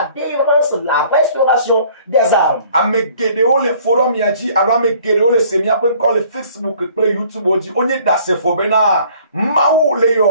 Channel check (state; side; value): inverted; both; correlation -0.56